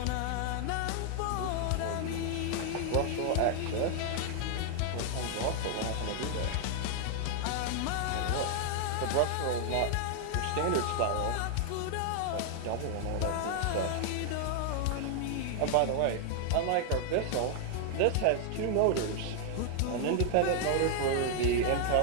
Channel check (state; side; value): different; both; correlation 0.00